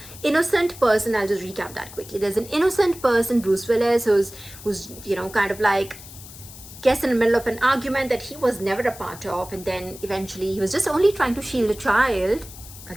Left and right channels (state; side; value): noise; left; hiss, 16 dB below the sound